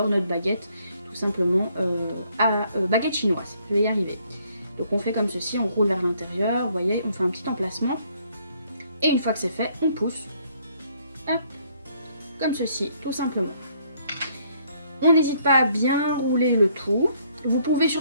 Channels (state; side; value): inverted; both; correlation -0.67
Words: notre baguette, tout simplement baguette chinoise. Je vais y arriver. Donc on fait comme ceci, on roule vers l'intérieur, vous voyez, on fait un petit emplacement. Et une fois que c'est fait, on pousse. Hop, comme ceci, tout simplement. On n'hésite pas à bien rouler le tout. Vous pouvez